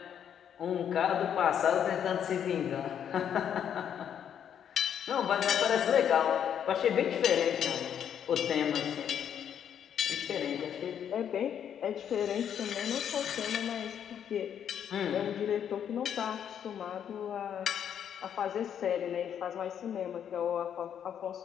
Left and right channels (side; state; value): right; quieter; 8.9 dB